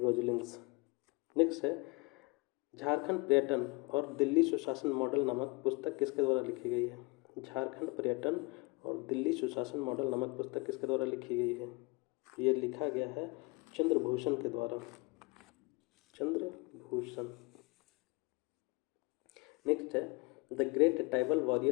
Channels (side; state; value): right; quieter; 27.1 dB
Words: Next है झारखंड पर्यटन और दिल्ली सुशासन मॉडल नामक पुस्तक किसके द्वारा लिखी गई है? झारखंड पर्यटन और दिल्ली सुशासन मॉडल नामक पुस्तक किसके द्वारा लिखी गई है? ये लिखा गया है चंद्रभूषण के द्वारा, चंद्रभूषण। नेक्स्ट है the great tribal